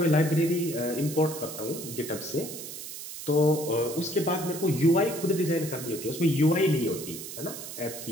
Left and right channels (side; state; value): right; noise; hiss, 10 dB below the sound